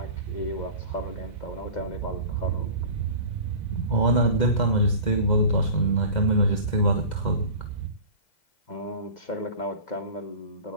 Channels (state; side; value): late; right; 2.0 ms